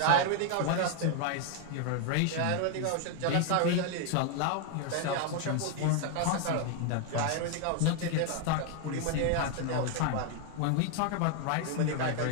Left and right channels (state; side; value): different; both; correlation 0.01